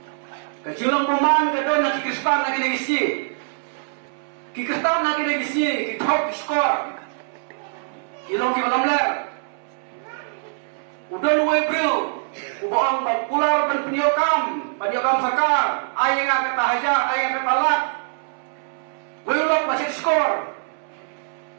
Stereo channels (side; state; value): left; silent; 63 dB below the other